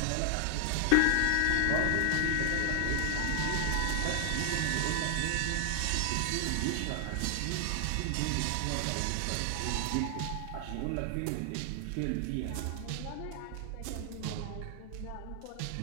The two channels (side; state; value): both; different; correlation 0.00